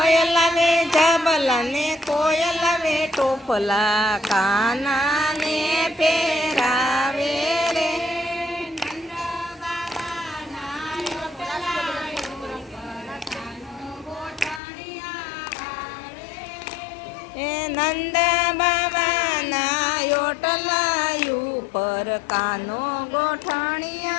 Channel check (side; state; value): right; drops out; at 14.6 s